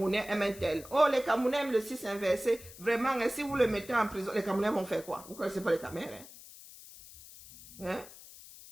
aiment un tel. Oh, les Camerounais aiment le 6 inversé. Vraiment, hein, si vous le mettez en prison, les Camerounais vont faire quoi? Vous ne connaissez pas les Camerounais, hein?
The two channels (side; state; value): left; noise; hiss, 18 dB below the sound